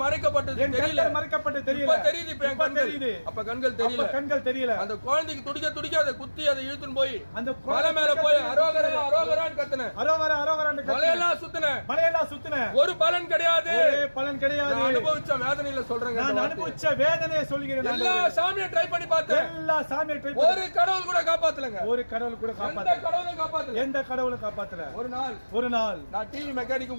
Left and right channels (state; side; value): inverted; both; correlation -1.00